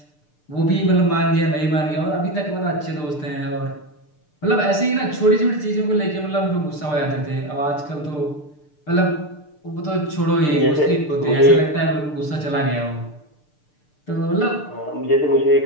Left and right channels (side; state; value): right; late; 6.7 ms